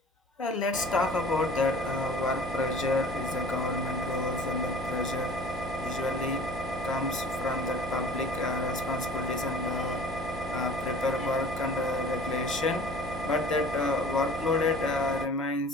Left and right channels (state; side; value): normal; both; correlation 0.45